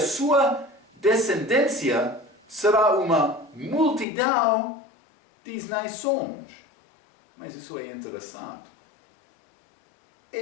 descendência será uma multidão de nações. Mas isso é interessante.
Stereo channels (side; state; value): right; drops out; at 4.0 s